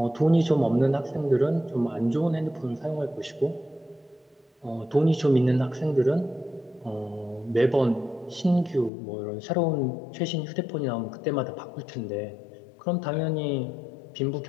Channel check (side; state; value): right; drops out; at 8.9 s